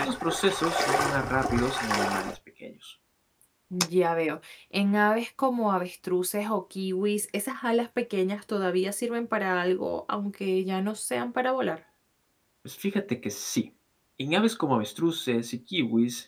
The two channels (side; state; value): both; identical; correlation 1.00